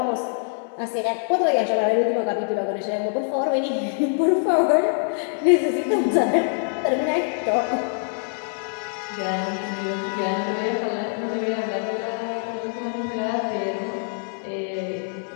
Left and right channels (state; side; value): silent; right; 61 dB below the other